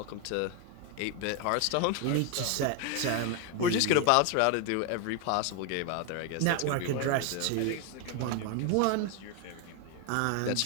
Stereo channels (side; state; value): both; different; correlation 0.01